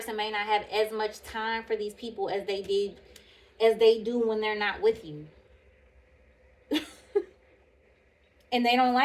may not have as much time for these people as they do when they're not with you. And they don't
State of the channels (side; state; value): both; identical; correlation 1.00